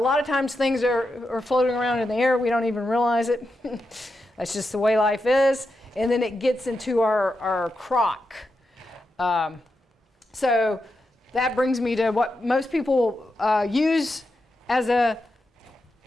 of times things are floating around in the air. We don't even realize it. That's just the way life is. And then it gets into our crock. So that brings me to what most people use as a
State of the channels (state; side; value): normal; both; correlation 0.87